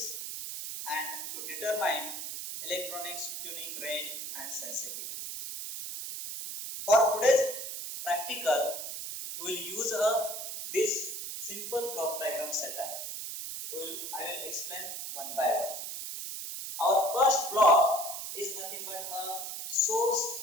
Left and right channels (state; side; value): noise; right; hiss, 6 dB below the sound